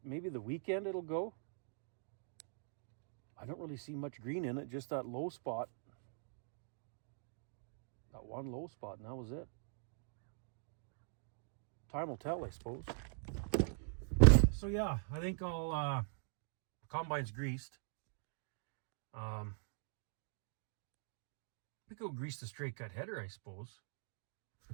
maybe the weekend it'll go. I don't really see much green in it, just that low spot. That one low spot, and that was it. Time will tell, I suppose. So yeah, I think I'll, combine's greased. We could go grease the straight cut header, I suppose.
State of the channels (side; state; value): left; silent; digital silence